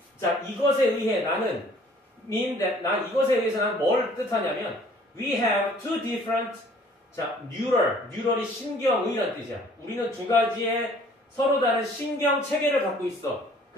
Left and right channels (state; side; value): normal; both; correlation 0.56